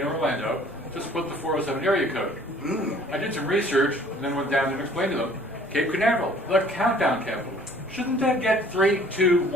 Orlando to split the 407 area code. I did some research and then went down and explained to them, Cape Canaveral, the countdown capital. Shouldn't that get 3, 2,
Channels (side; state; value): both; normal; correlation 0.54